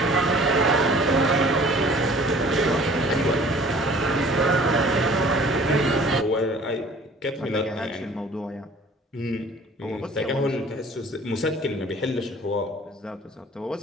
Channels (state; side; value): normal; both; correlation 0.50